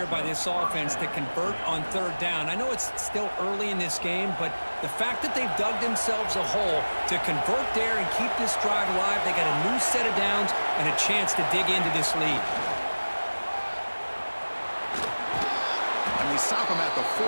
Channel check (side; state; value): both; inverted; correlation -1.00